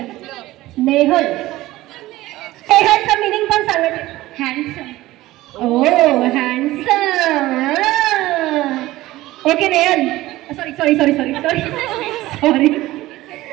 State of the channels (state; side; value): quieter; left; 17.2 dB